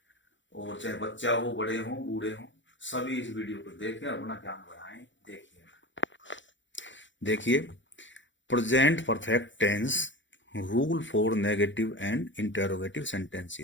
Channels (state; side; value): late; right; 0.54 ms